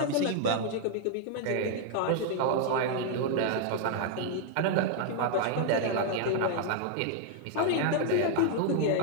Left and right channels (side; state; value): both; different; correlation 0.00